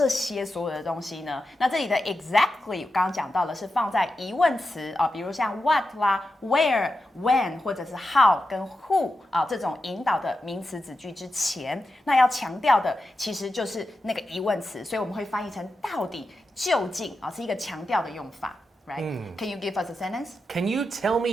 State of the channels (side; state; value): both; normal; correlation 0.89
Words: 些所有的东西呢？那这里的 exactly 刚刚讲到了是放在疑问词啊，比如像 what 啦、where、when 或者是 how 跟 who 啊这种引导的名词子句之前，那要强调的其实就是那个疑问词，所以我们会翻译成到底。究竟啊，是一个强调的用法 ，right？ Can you give us a sentence? Can you tell